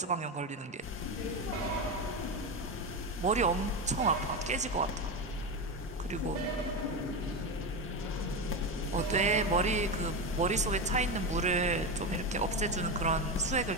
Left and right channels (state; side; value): normal; both; correlation 0.16